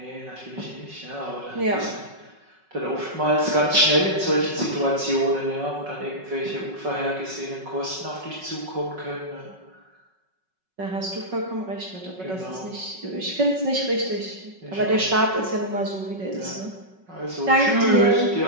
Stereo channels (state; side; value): late; left; 5.4 ms